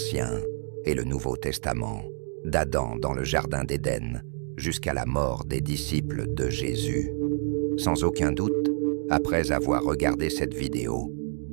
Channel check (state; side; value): silent; left; digital silence